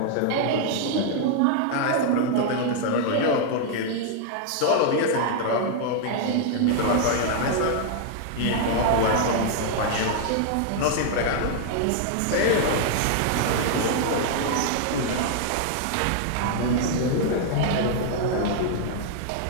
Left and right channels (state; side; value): different; both; correlation 0.00